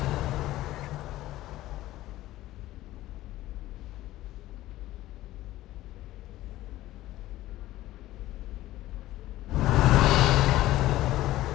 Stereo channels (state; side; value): quieter; right; 15.7 dB